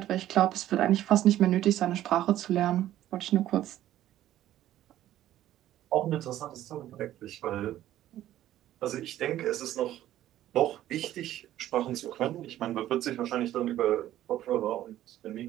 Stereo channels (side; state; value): left; quieter; 13.1 dB